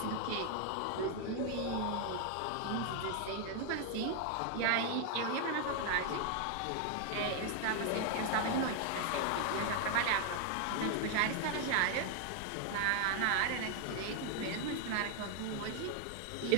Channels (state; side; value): different; both; correlation 0.00